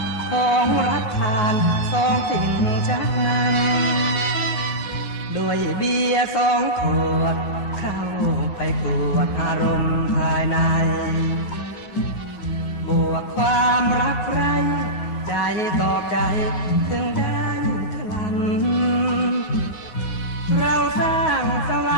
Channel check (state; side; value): late; right; 9.5 ms